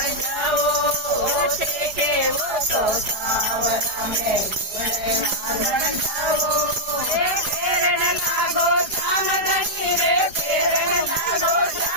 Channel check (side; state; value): left; late; 4.9 ms